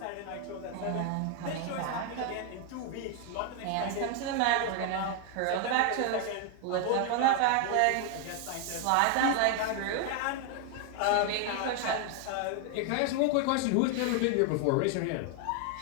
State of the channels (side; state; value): both; different; correlation 0.01